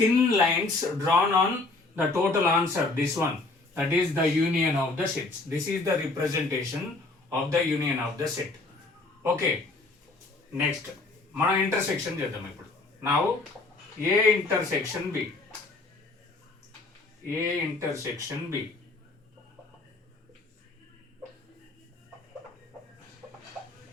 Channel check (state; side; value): quieter; right; 3.3 dB